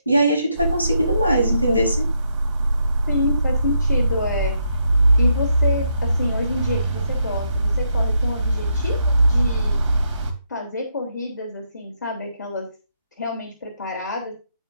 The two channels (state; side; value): inverted; both; correlation -0.78